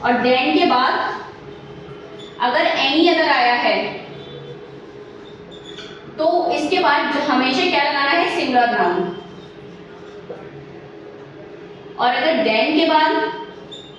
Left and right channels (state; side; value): identical; both; correlation 1.00